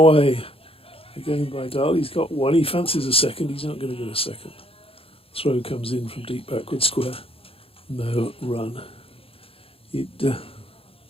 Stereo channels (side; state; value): right; late; 0.27 ms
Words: again by Dahl. He's got one. He fancies a second. He's not going to get a second. Throw comes in from deep backward square. No run.